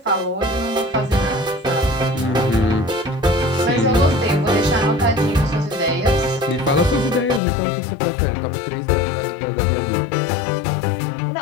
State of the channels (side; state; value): right; drops out; at 7.4 s